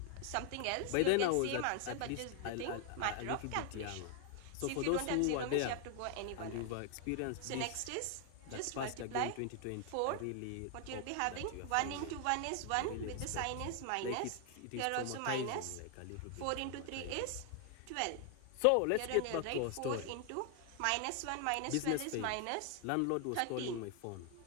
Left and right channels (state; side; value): different; both; correlation 0.00